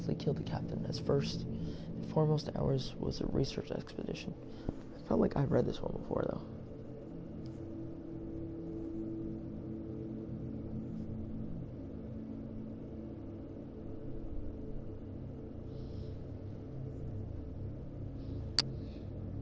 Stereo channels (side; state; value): both; identical; correlation 1.00